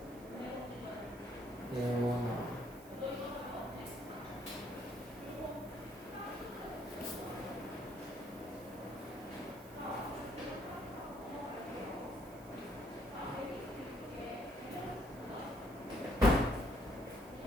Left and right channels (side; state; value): right; noise; hiss, 21 dB below the sound